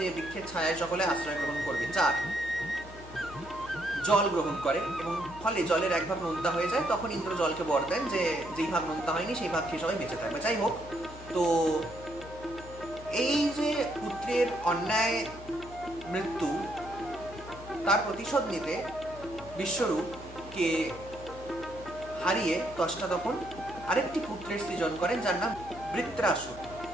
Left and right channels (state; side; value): noise; left; hum, 16 dB below the sound